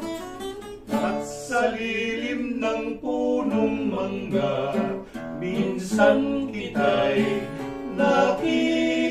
at sa lilim ng punong mangga, minsan kita'y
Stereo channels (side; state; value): both; identical; correlation 1.00